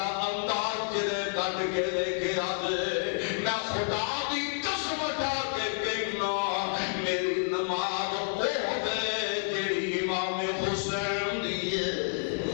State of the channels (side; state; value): right; silent; digital silence